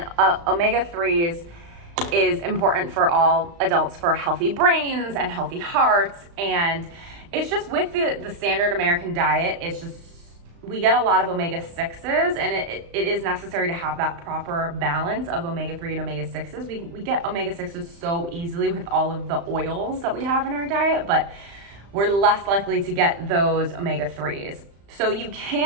is important for all adults for healthy brains and healthy hearts. And it's just with the standard American diet, it's just, we get a lot of omega-6s, and it is necessary to have that proper balance of omega-3 and omega-6s. We get omega-6s so easily with all of the oils that we have in our diet, but we're less likely to get those omega-3s. So you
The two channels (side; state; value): left; late; 35 ms